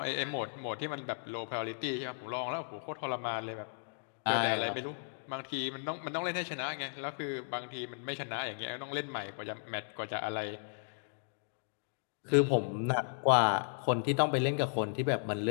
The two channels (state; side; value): silent; right; digital silence